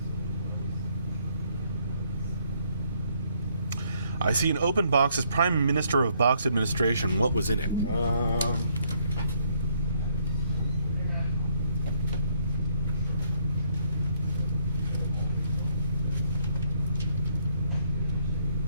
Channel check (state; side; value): inverted; both; correlation -0.69